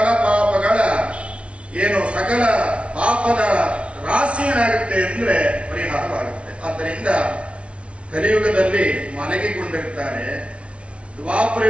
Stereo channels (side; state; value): left; late; 0.061 ms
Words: ಪಾಪಗಳ ಸಕಲ ಪಾಪದ ರಾಶಿ ಏನಾಗುತ್ತೆ ಅಂದ್ರೆ ಪರಿಹಾರವಾಗುತ್ತೆ. ಆದ್ದರಿಂದ ಕಲಿಯುಗದಲ್ಲಿ ಮಲಗಿಕೊಂಡಿರ್ತಾರೆ,